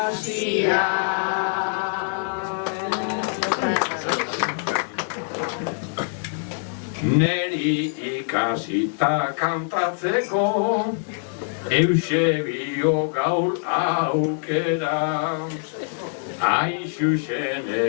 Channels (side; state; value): right; silent; digital silence